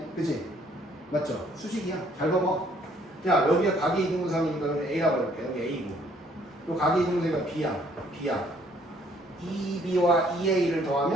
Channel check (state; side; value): normal; both; correlation 0.63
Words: 그치? 맞죠? 수직이야. 잘 봐봐. 야 여기가 각이 이등분선이니까 A라고 해볼게. 여기 A고 요 각이 이등분선이가 B야. B야. 2B와 2A를